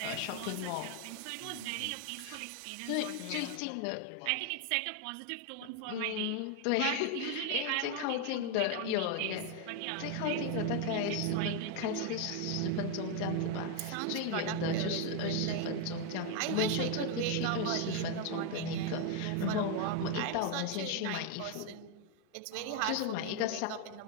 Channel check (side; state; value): both; different; correlation 0.01